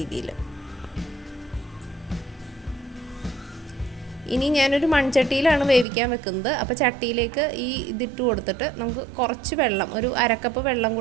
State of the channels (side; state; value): left; drops out; at 5.9 s